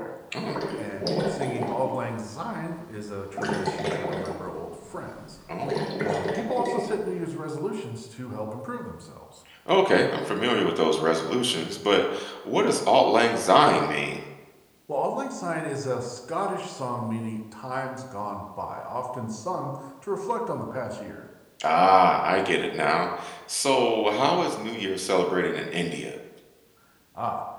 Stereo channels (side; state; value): both; identical; correlation 1.00